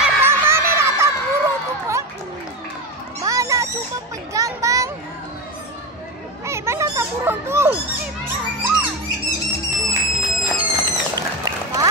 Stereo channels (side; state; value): both; normal; correlation 0.18